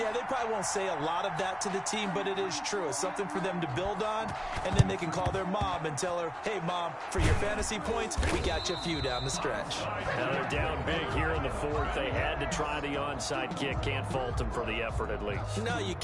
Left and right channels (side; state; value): both; identical; correlation 1.00